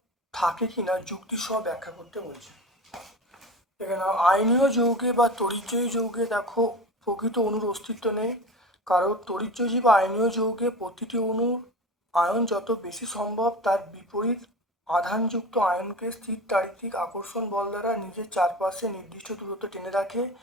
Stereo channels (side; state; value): both; normal; correlation 0.32